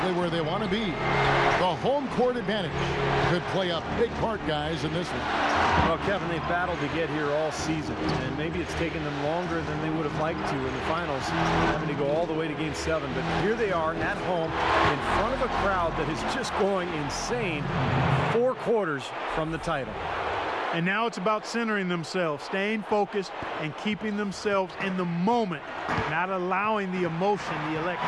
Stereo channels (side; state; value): both; identical; correlation 1.00